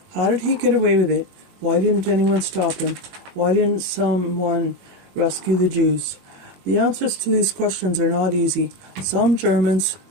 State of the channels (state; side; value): late; left; 21 ms